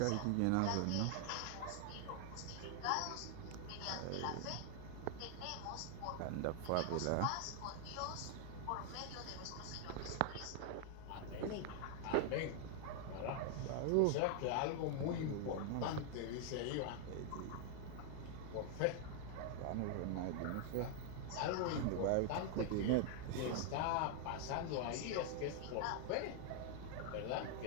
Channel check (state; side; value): different; both; correlation 0.00